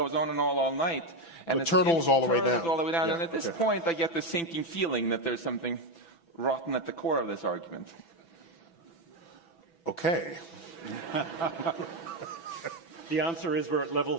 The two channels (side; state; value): right; late; 5.9 ms